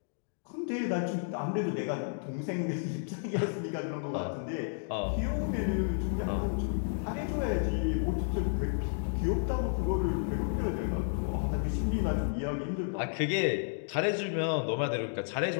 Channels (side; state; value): right; silent; digital silence